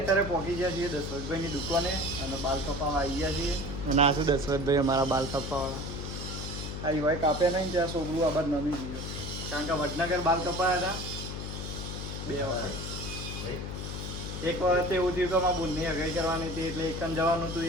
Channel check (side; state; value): left; noise; hum, 6 dB below the sound